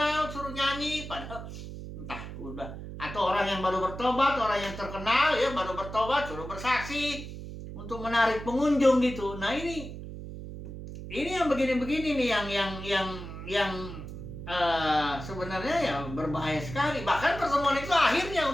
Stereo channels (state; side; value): noise; right; hum, 10 dB below the sound